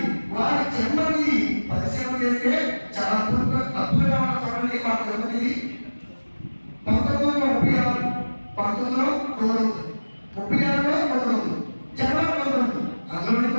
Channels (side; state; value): both; inverted; correlation -1.00